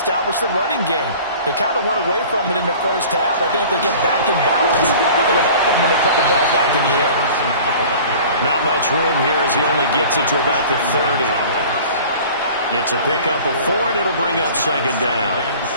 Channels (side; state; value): both; inverted; correlation -0.44